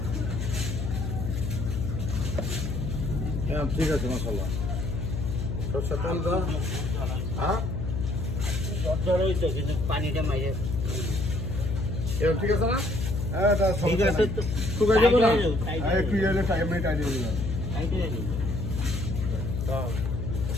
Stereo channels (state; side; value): noise; left; hum, 2 dB below the sound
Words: হ্যাঁ ঠিক আছে মাশাআল্লাহ সরষের তেল দাও হ্যাঁ জ্বর হইতো কিন্তু পানিটা মাইরে এরকম ঠিক আছে না হ্যাঁ এটা ঠিক আছে তো শুকাই যাবে না টাইট হ্যাঁ একটু এলে টাইম নেই টাইট হয়ে যাবে টাইট হয়ে যাবে। দাও